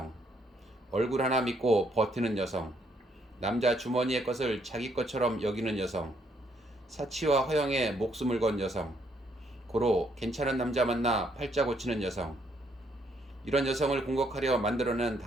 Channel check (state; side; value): normal; both; correlation 0.71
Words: 얼굴 하나 믿고 버티는 여성, 남자 주머니의 것을 자기 것처럼 여기는 여성, 사치와 허영에 목숨을 건 여성, 고로 괜찮은 남자 만나 팔자 고치는 여성, 이런 여성을 공격하려 만들어낸